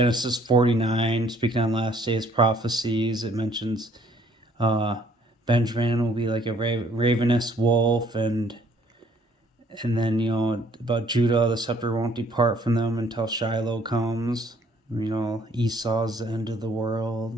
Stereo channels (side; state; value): both; normal; correlation 0.61